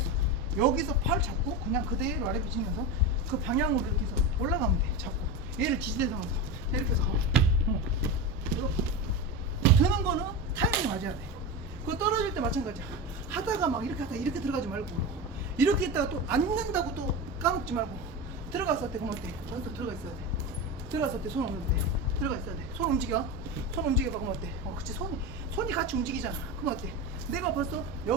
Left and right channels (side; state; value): both; normal; correlation 0.22